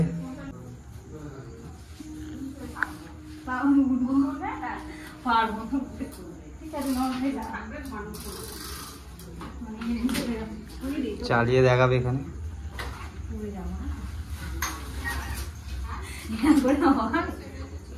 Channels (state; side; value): identical; both; correlation 1.00